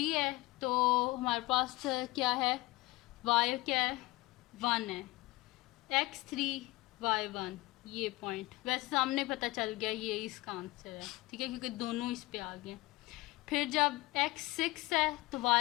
है तो हमारे पास क्या है, y क्या है 1 है, x 3 y 1 ये पॉइंट। वैसे सामने पता चल गया ये इसका आंसर है। ठीक है, क्योंकि दोनों इस पे आ गए। फिर जब x 6 है तो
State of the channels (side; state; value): right; quieter; 20.5 dB